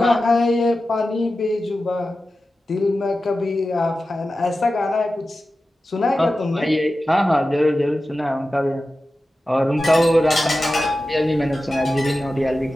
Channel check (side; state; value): both; normal; correlation 0.93